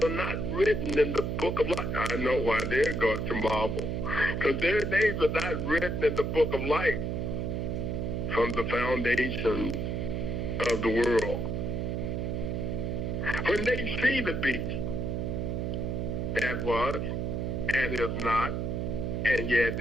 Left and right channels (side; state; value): right; noise; hum, 1 dB below the sound